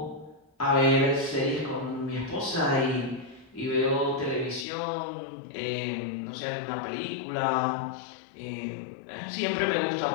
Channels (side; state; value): right; drops out; at 4.7 s